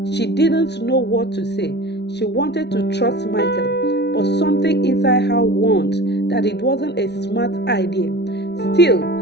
She didn't know what to say. She wanted to trust Michael, but something inside her warned that it wasn't a smart idea. Still,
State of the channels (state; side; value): late; right; 0.50 ms